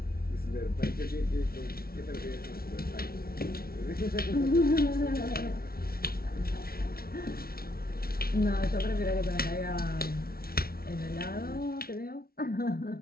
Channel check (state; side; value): late; right; 0.44 ms